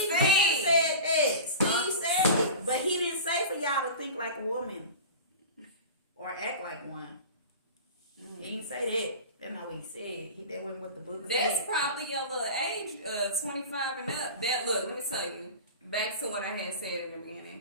said that. Steve said it. But he didn't say for y'all to think like a woman or act like one. Mm-hmm. He didn't say that. That's not what he said. That wasn't what the book said. That's probably your little age, 25 and up. Look, let me tell you. Back to what I had said in the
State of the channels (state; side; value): inverted; both; correlation -0.34